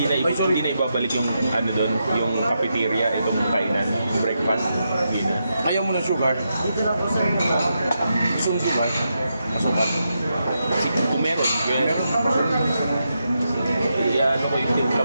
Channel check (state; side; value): inverted; both; correlation -0.84